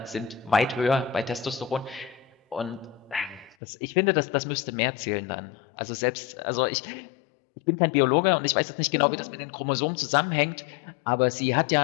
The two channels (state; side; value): drops out; right; at 3.6 s